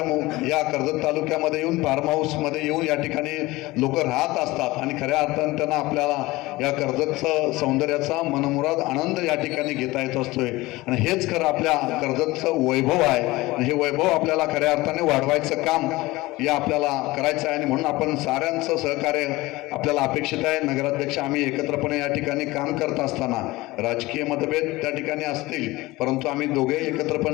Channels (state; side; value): quieter; right; 20.1 dB